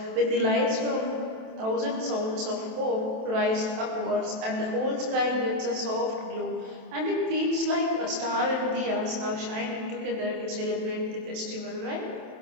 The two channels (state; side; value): late; left; 27 ms